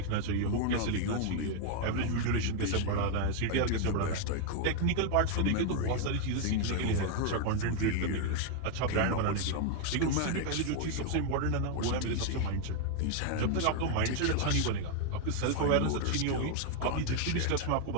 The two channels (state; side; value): different; both; correlation 0.00